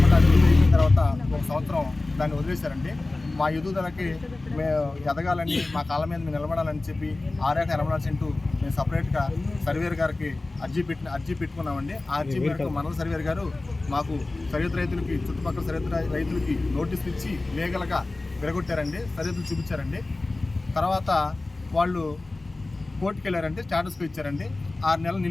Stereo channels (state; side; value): quieter; right; 3.1 dB